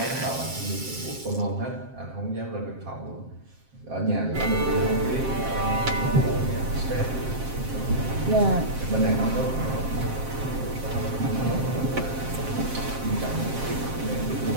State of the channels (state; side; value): late; left; 7.5 ms